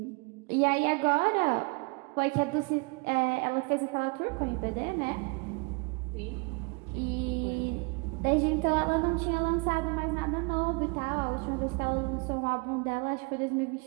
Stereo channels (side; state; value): left; quieter; 30.8 dB